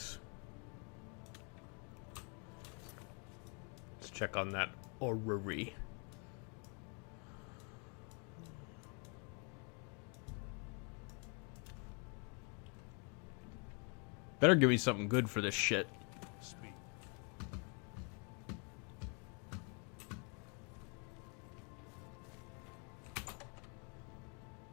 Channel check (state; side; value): quieter; right; 36.6 dB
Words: Let's check on that orrery. Better give me something good for this shit. Speak.